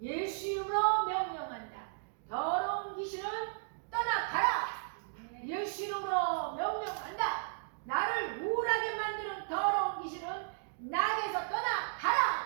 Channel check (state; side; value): silent; left; digital silence